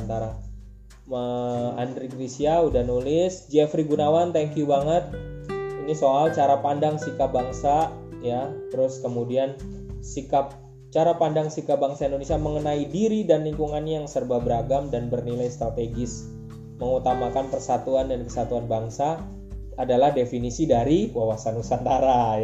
Andri Grisya udah nulis, Jeffrey Gunawan thank you banget. Ini soal cara pandang sikap bangsa ya, terus kemudian cara pandang sikap bangsa Indonesia mengenai diri dan lingkungannya yang serba beragam dan bernilai strategis, mengutamakan persatuan dan kesatuan bangsa adalah definisi dari Wawasan Nusantara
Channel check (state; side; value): identical; both; correlation 1.00